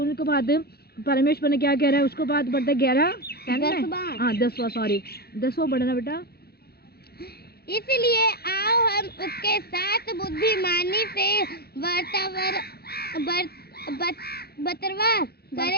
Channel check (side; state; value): right; late; 0.46 ms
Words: बाद परमेश्वर ने क्या कह रहा है उसको बाद बढ़ता 11 हाँ 10वां सॉरी 10वां बढ़ना बेटा। इसलिए आओ हम उसके साथ बुद्धिमानी से